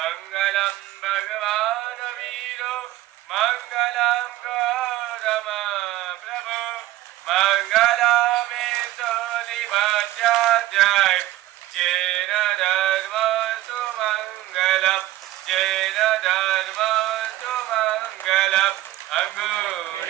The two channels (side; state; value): left; quieter; 15.6 dB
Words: भगवान वीरो मंगलम गौतम प्रभु मंगलमे सोलिभाष्याध्याय जैन धर्मस्तु मंगलम जैन धर्मस्तु मंगलम